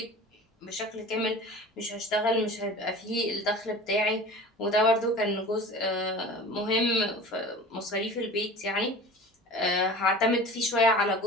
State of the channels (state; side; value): normal; both; correlation 0.39